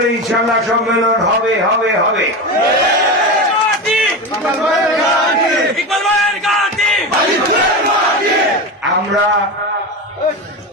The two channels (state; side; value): normal; both; correlation 0.21